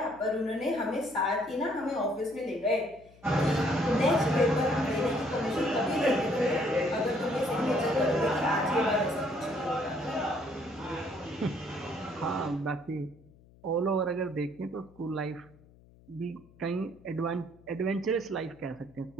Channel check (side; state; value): left; noise; hum, 26 dB below the sound